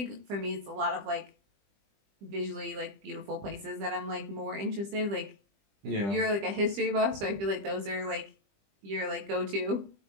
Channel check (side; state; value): left; late; 20 ms